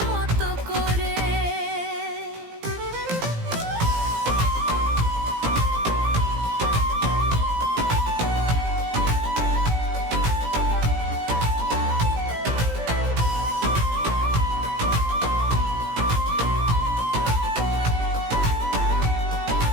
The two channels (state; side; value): late; left; 17 ms